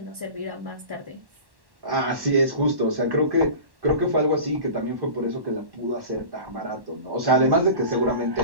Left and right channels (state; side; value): late; left; 1.1 ms